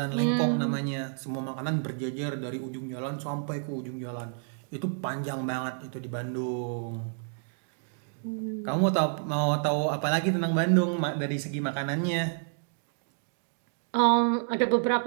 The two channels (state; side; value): silent; left; digital silence